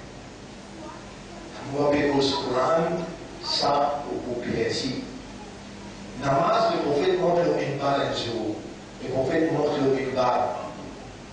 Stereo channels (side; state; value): both; identical; correlation 1.00